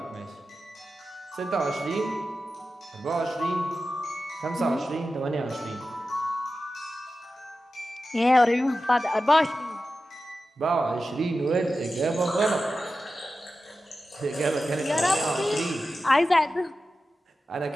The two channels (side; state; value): both; normal; correlation 0.93